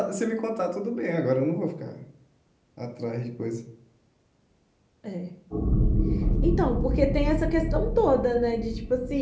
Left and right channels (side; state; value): both; identical; correlation 1.00